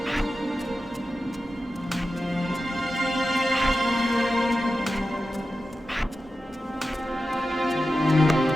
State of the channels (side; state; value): both; normal; correlation 0.92